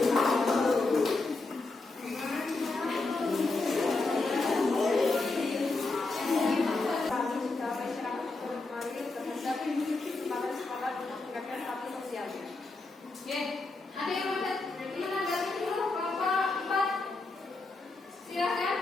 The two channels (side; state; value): right; quieter; 3.4 dB